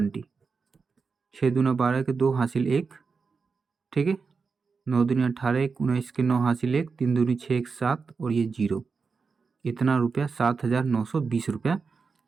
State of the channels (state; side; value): quieter; left; 5.0 dB